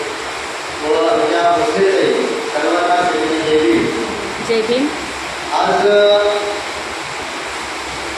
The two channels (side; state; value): both; identical; correlation 1.00